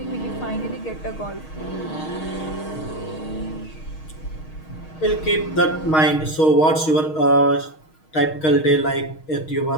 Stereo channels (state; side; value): late; right; 6.4 ms